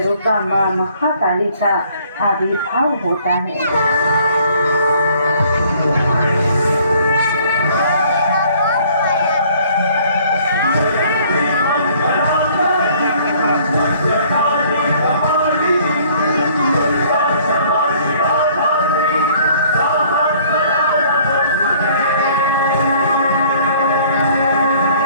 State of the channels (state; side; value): inverted; both; correlation -0.58